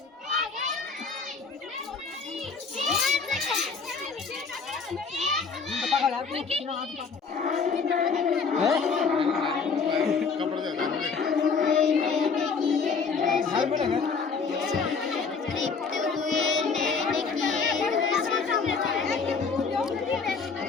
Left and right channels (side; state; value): right; quieter; 5.1 dB